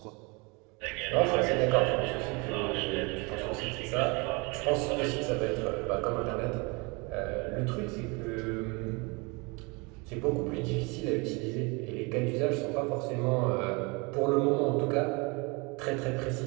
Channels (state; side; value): quieter; left; 28.6 dB